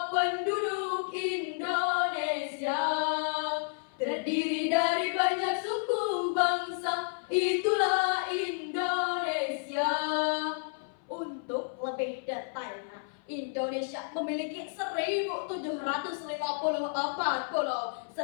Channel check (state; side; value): silent; right; 57 dB below the other